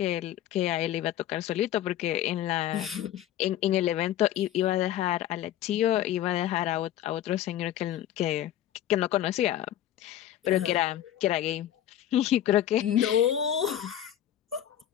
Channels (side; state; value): right; quieter; 11.7 dB